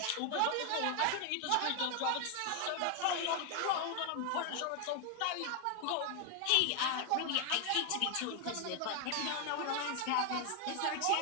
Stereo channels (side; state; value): both; different; correlation 0.00